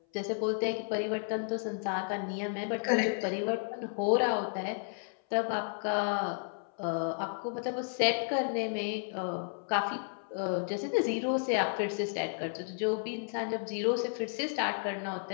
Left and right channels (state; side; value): silent; right; 56 dB below the other